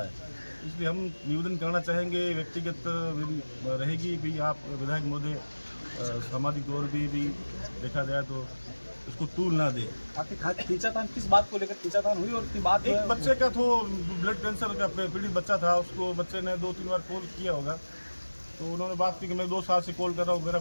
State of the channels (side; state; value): both; inverted; correlation -1.00